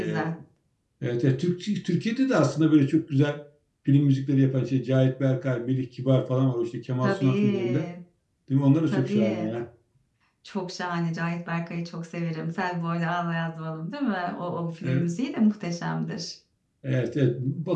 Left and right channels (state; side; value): identical; both; correlation 1.00